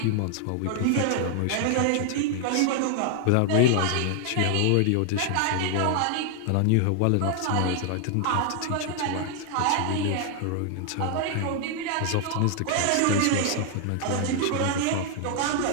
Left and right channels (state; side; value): different; both; correlation 0.00